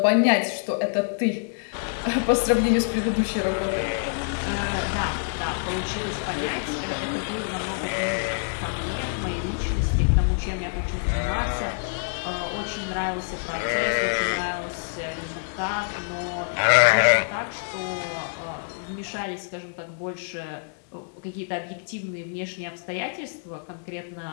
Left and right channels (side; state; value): right; silent; digital silence